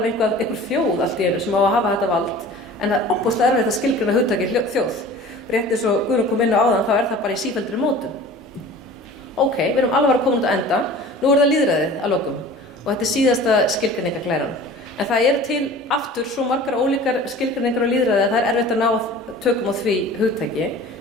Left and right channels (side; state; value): both; normal; correlation 0.42